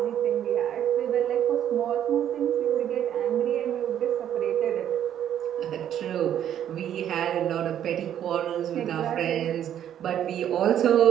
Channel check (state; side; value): quieter; left; 10.3 dB